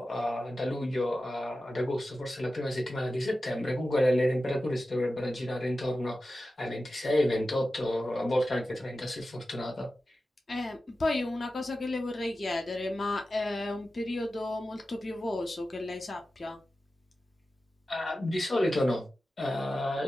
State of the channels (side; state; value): both; normal; correlation 0.94